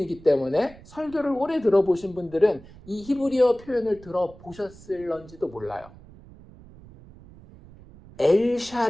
때문에 설교를 오래 들어보신 분들은 이 히브리어 표현을 들어보셨을런지도 몰라요.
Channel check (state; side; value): noise; right; rumble, 21 dB below the sound